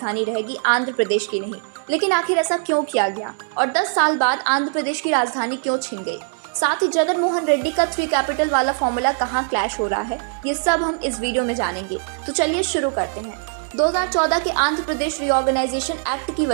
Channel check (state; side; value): silent; left; 59 dB below the other